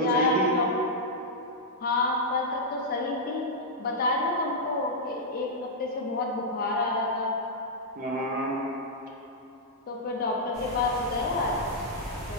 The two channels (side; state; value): both; normal; correlation -0.07